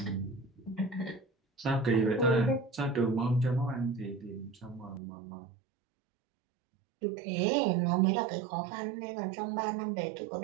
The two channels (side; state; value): left; drops out; at 5.0 s